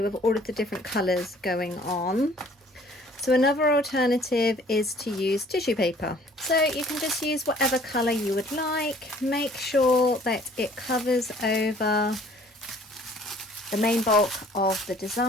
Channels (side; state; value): both; normal; correlation 0.55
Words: with all of the different colours going on. So another alternative is to use tissue paper. So you can just use whatever colour you would like. Make sure that it covers over the main bulk of the